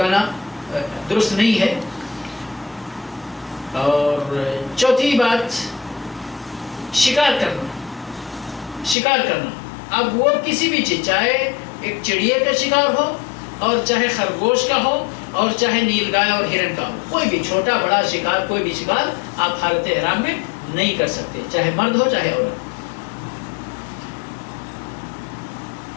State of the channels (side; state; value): right; drops out; at 9.0 s